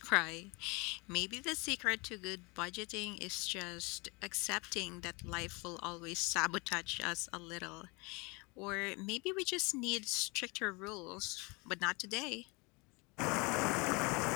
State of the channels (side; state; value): right; quieter; 28.1 dB